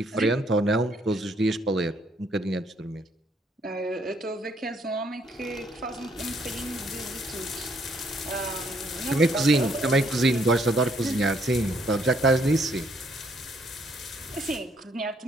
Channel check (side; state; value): both; normal; correlation 0.68